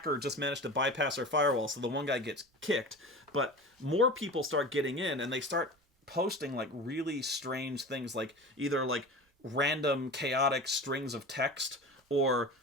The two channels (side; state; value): both; normal; correlation 0.33